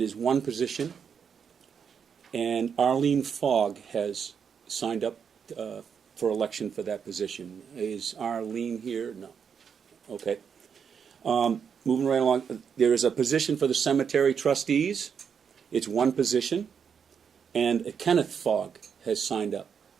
is one position, and Arlene Fogg has signed up for election for that position. Is Arlene here? No. Okay. Moving right along, there is a position for the cemetery trustees. It's one position, and Kenneth Fogg has signed up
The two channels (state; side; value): quieter; left; 7.0 dB